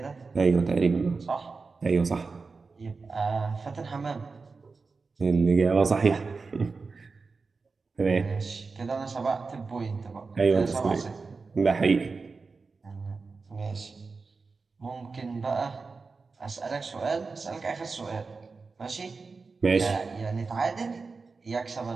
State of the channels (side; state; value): left; quieter; 4.3 dB